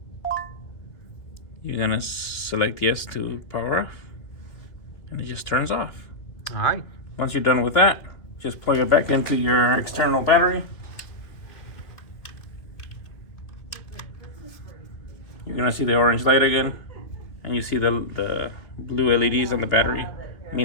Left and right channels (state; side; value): late; right; 2.7 ms